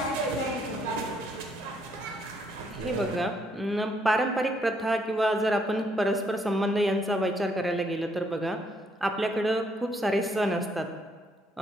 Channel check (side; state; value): both; normal; correlation 0.71